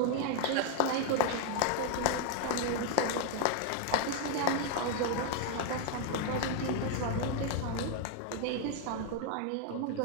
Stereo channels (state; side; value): different; both; correlation 0.00